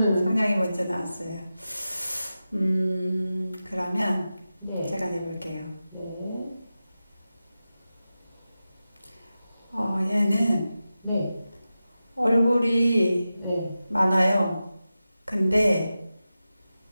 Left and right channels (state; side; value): inverted; both; correlation -0.93